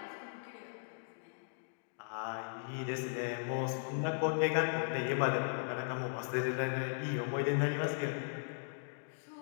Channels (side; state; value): right; silent; digital silence